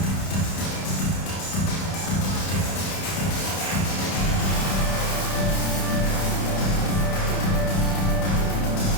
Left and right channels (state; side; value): late; right; 31 ms